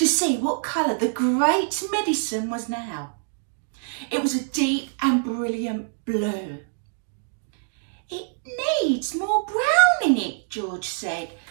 see what colour the great medicine was now. It was a deep and brilliant blue. "It needs more brown in it," George said.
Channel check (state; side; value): silent; left; digital silence